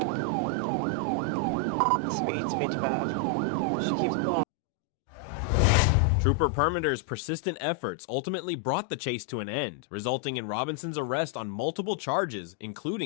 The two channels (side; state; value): right; drops out; at 4.5 s